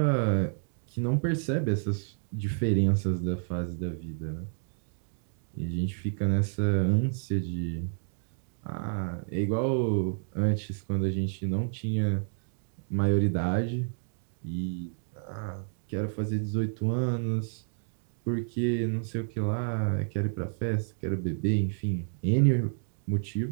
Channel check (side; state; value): left; silent; digital silence